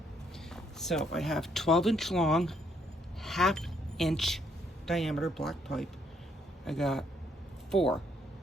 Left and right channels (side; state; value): both; normal; correlation 0.70